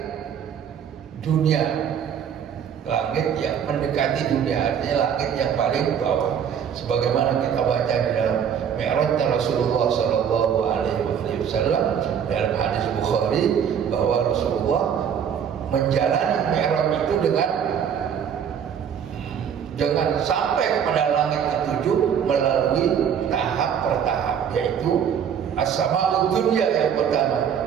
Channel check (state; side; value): quieter; left; 8.1 dB